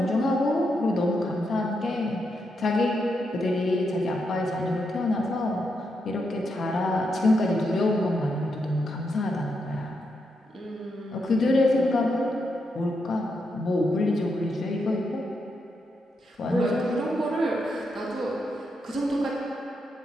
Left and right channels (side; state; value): both; normal; correlation 0.82